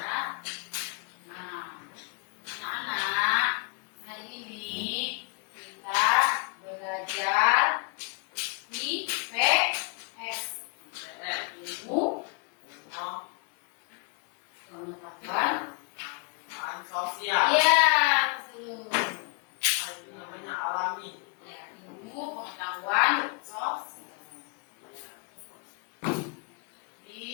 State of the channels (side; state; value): right; quieter; 35.0 dB